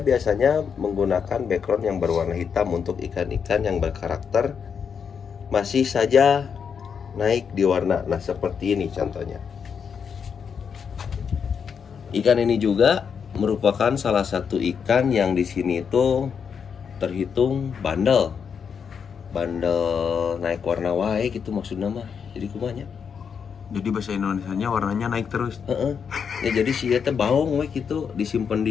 menggunakan background yang berwarna hitam untuk ikan-ikan yang berkarakter masih saja naik di warna. Nah, seperti ini contohnya. Ikan ini juga merupakan salah satu ikan yang di sini itu terhitung bandel naik warna wae gitu maksudnya mah. Jadi kumanya. Jadi bahasa Indonesianya warnanya naik terus. Ya jadi sih ya baung we gitu, disimpan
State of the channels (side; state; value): right; quieter; 6.7 dB